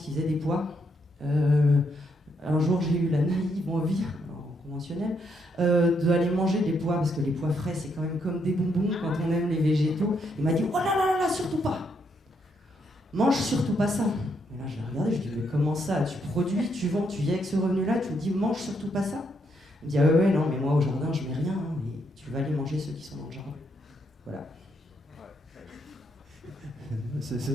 faisaient des pois, un jour j'ai eu la naïve envie, en conventionnel, d'aller manger des pois, parce que les pois frais c'est quand même comme des bonbons quand on aime les végétaux. Il m'a dit oh là là là, surtout pas, mange surtout pas ça. Et là je l'ai regardé, je lui ai dit mais comment ça, tu produis, tu vends, tu viens avec ce revenu là, tu me dis mange surtout pas ça. Il me dit ah ouais non mais moi au jardin je mets rien, hein, mais tu vas aller manger ceux qui sont dans le jardin. Voilà.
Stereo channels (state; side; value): normal; both; correlation 0.76